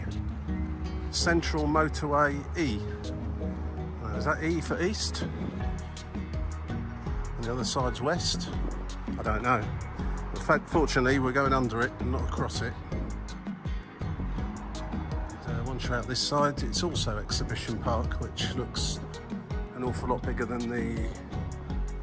Central Motorway E. Is that E for east? And the other side's west? I don't know. In fact, fortunately, we're going under it and not across it. And, once you're out this side, it's also Exhibition Park, which looks an awful lot bigger than the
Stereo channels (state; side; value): identical; both; correlation 1.00